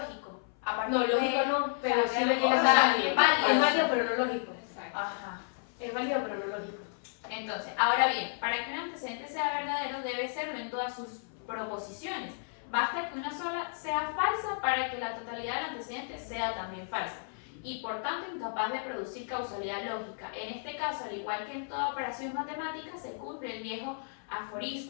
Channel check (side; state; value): right; silent; 56 dB below the other